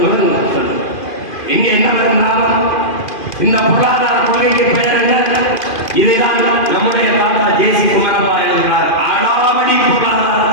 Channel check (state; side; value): late; right; 2.5 ms